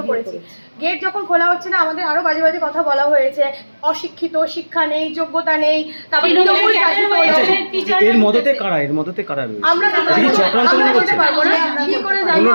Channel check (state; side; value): inverted; both; correlation -1.00